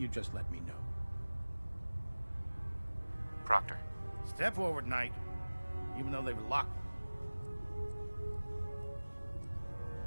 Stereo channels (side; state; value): both; inverted; correlation -1.00